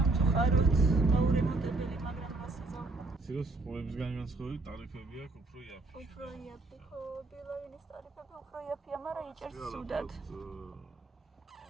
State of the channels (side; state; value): left; quieter; 3.3 dB